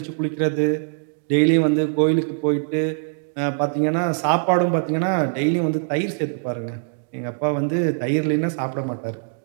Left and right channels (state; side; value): silent; left; digital silence